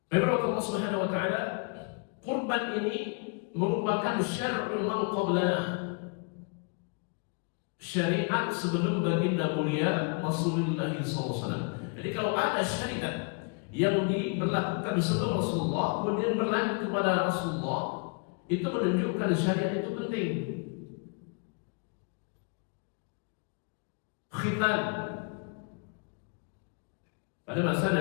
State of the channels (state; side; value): quieter; right; 35.8 dB